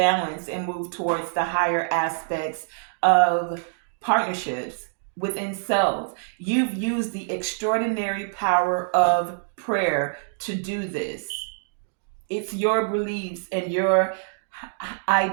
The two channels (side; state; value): left; silent; digital silence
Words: and move towards the higher aspects of partnerships within self. You've used the extraordinary power of prayer to do this. It's your beliefs and your